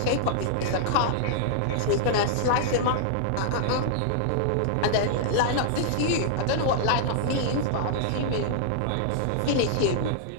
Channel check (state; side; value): different; both; correlation -0.01